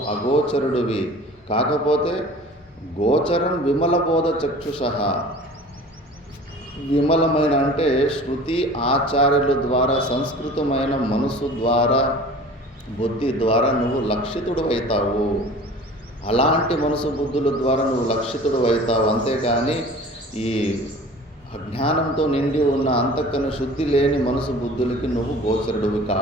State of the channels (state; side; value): normal; both; correlation 0.43